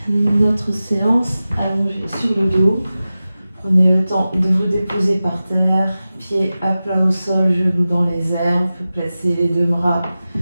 notre séance allongée sur le dos. Prenez le temps de vous déposer par terre, pieds à plat au sol, genoux dans les airs. Vous pouvez placer les deux bras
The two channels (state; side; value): inverted; both; correlation -0.95